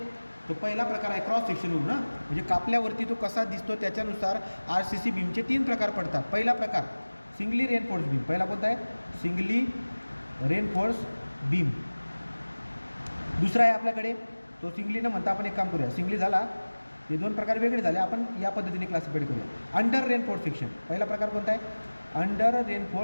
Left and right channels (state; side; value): inverted; both; correlation -1.00